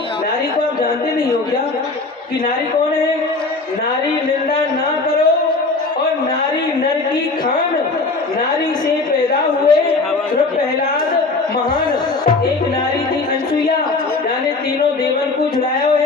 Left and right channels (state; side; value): quieter; right; 3.7 dB